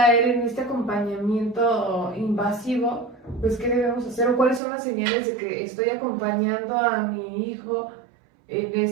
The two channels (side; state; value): left; drops out; at 4.6 s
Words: en este acompañamiento invasivo, pues, ¿qué debemos hacer? ¿O cuáles son las señales de que estoy acompañando a mi hijo en